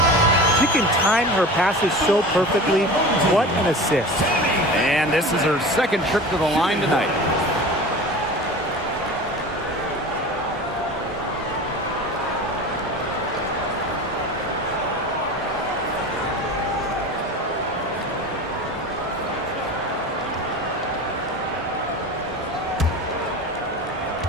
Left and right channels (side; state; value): both; normal; correlation 0.34